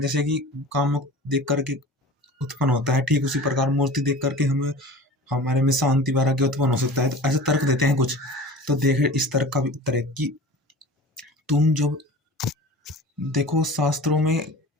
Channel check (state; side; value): normal; both; correlation 0.38